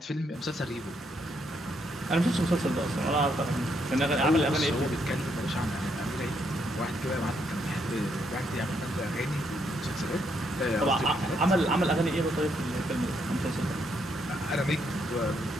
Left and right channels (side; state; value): both; normal; correlation 0.75